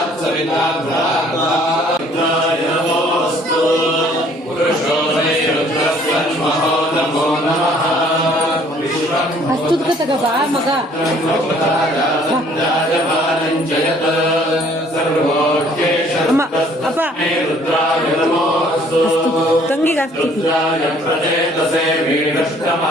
सविता नमोऽस्तु पुरुषो मे रुद्रस्वन्महो नमो नमः ಅಷ್ಟುದ್ಗತಗ ಬಾ ಮಗ ಅಮ್ಮ ಅಪ್ಪ ತಂಗಿಗೆ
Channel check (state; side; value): normal; both; correlation 0.58